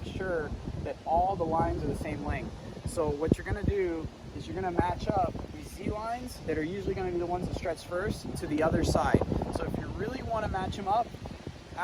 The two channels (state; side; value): identical; both; correlation 1.00